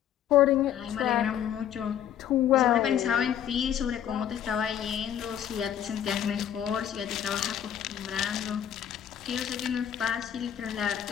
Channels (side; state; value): right; quieter; 9.9 dB